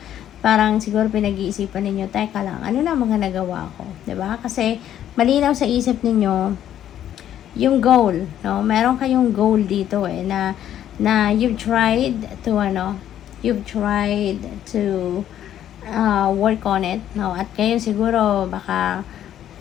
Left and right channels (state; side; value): quieter; right; 11.0 dB